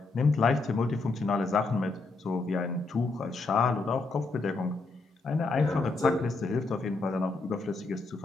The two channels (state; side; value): quieter; right; 3.6 dB